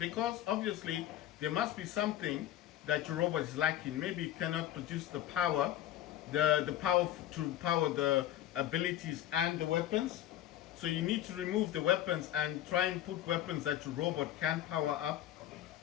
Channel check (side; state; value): right; quieter; 12.6 dB